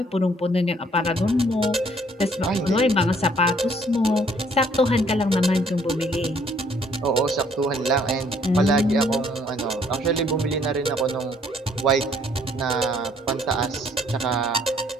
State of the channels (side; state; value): both; normal; correlation 0.63